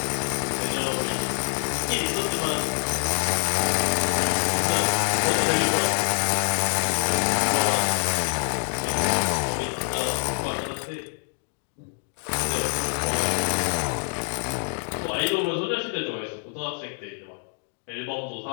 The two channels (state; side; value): silent; right; 61 dB below the other